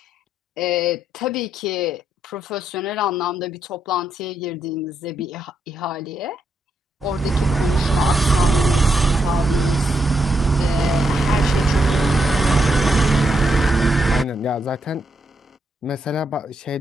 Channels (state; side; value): normal; both; correlation 0.80